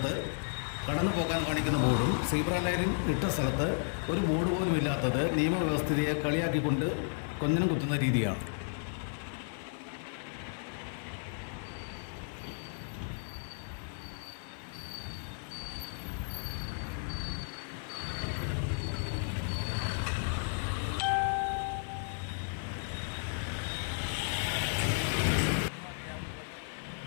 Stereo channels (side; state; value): right; silent; 55 dB below the other